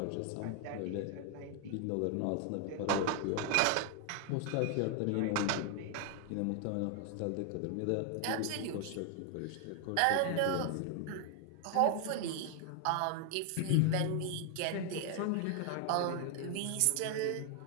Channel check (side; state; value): both; different; correlation 0.00